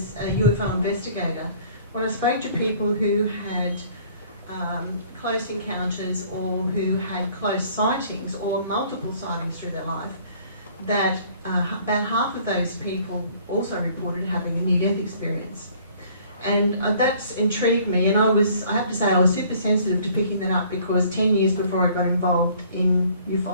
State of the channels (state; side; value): inverted; both; correlation -0.56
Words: a UFO investigator, when I spoke to people who had close encounters or who had close sightings or multiple sightings through their life, that about half of those people also reported having a near-death experience. And that's intrigued me, and I have to say I was super sensitive to picking that up, because 10 years before I got involved in